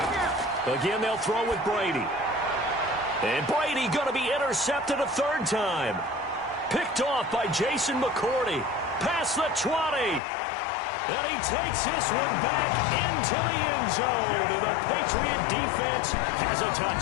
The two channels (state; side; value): drops out; right; at 10.2 s